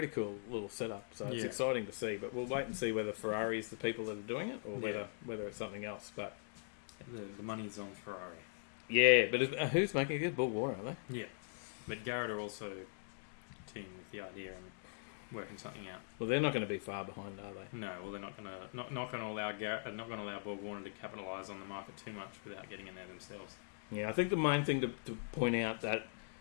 cool little setup, so it's exciting to see, but we'll wait and see whether Ferrari is the people that are doing it or whether it's something else. But the money is on Ferrari. Yeah, but who's making it? Borg, aren't they? Yeah, but Garrett are also teaming with the idea and working something out. Well, they're not going to be far behind, are they? No, well, they're not going to allow Garrett, not going to allow Borg Warner to capitalise on the market too much without getting in there themselves. Yeah, I think the main thing to point out that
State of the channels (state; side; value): silent; right; digital silence